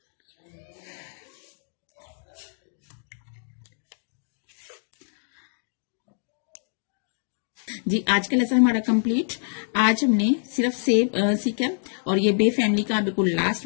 जी, आज का लेसन हमारा कंप्लीट। आज हमने सिर्फ से सीखा और ये बे फैमिली का बिल्कुल लास्ट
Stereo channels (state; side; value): silent; right; digital silence